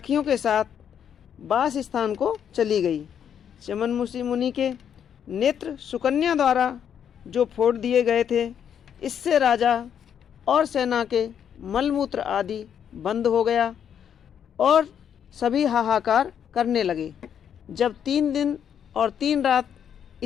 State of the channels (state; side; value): quieter; right; 8.6 dB